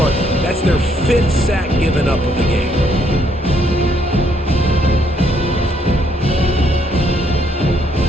That's their 5th sack given up of the game.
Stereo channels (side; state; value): both; normal; correlation 0.70